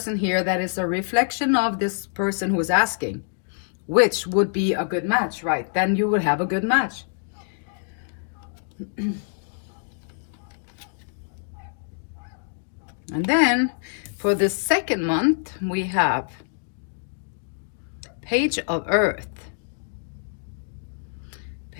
here that is a reflection of this person who is asking, which would be a good match, right? Then you would have a good match. And then for the second month, we have Page of Earth.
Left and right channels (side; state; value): right; silent; digital silence